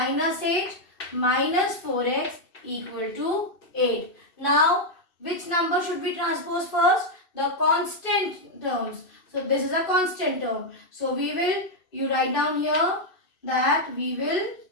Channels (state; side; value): late; right; 2.7 ms